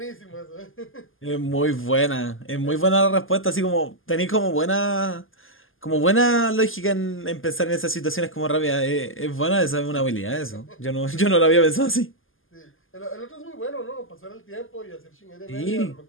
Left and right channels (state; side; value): late; right; 0.59 ms